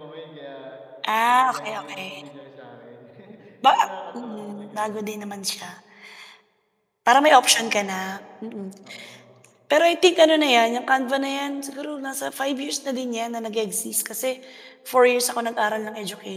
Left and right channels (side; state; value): both; identical; correlation 1.00